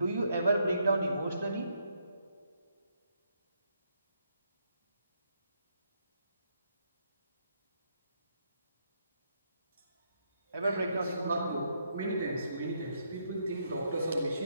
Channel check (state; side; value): inverted; both; correlation -0.76